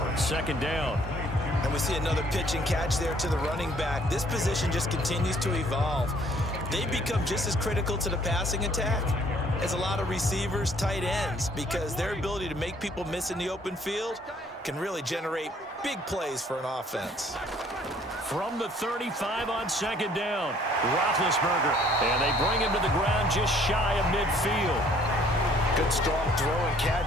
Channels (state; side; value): normal; both; correlation 0.60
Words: down. And we see another pitch and catch there to the running back. This position just continues to evolve. They become just as critical to the passing attack as a lot of receivers, tight ends, because their ability to make people miss in the open field can really generate big plays for an offense. From the 35 on 2nd down, Roethlisberger, and they bring him to the ground just shy of midfield. Good strong throw and